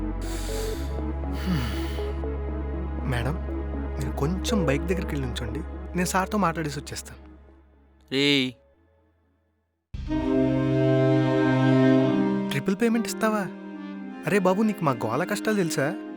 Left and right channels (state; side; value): identical; both; correlation 1.00